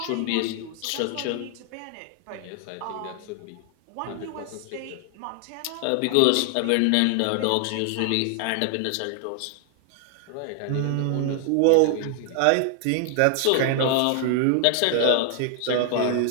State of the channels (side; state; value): both; different; correlation 0.00